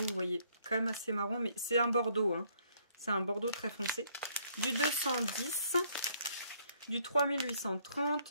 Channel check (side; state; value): both; inverted; correlation -0.66